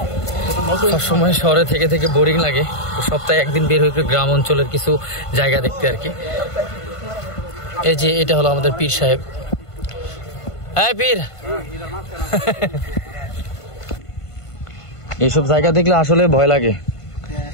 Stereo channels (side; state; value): right; late; 1.5 ms